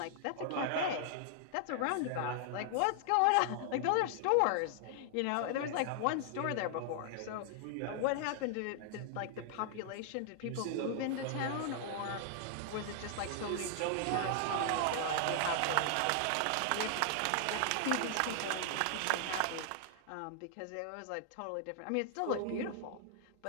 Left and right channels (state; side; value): different; both; correlation -0.01